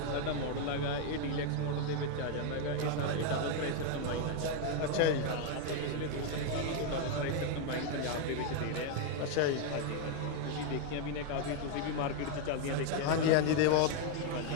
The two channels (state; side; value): different; both; correlation 0.01